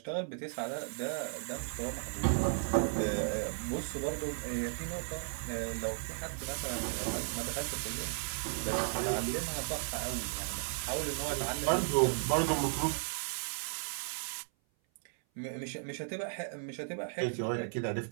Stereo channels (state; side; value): silent; left; 54 dB below the other